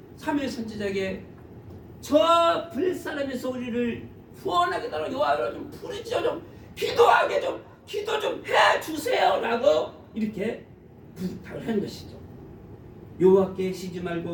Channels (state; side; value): identical; both; correlation 1.00